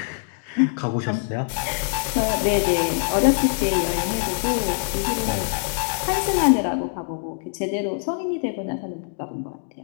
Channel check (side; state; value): right; silent; 63 dB below the other